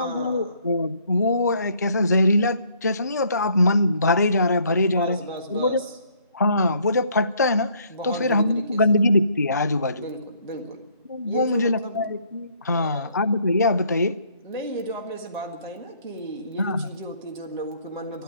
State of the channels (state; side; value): inverted; both; correlation -0.64